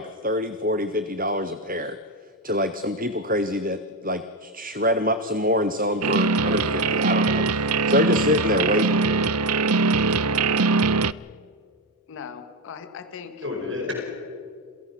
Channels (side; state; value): both; normal; correlation 0.12